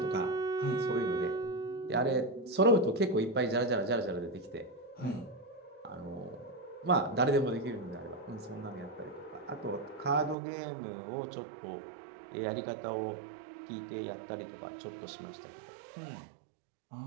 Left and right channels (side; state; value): left; drops out; at 10.4 s